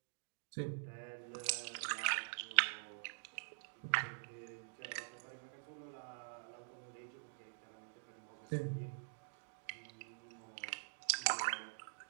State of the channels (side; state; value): left; silent; digital silence